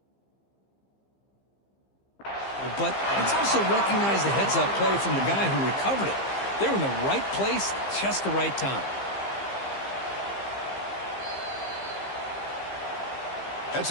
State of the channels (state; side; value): late; right; 15 ms